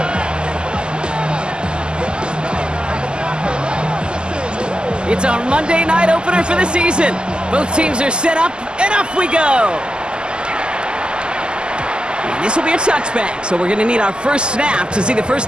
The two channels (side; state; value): left; late; 0.048 ms